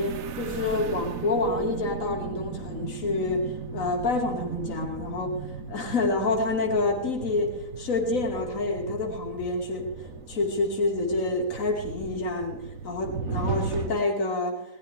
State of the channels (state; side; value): late; right; 3.9 ms